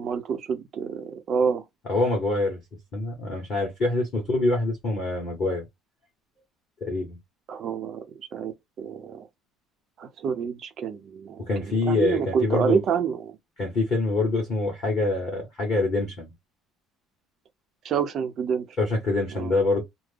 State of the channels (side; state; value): both; normal; correlation 0.64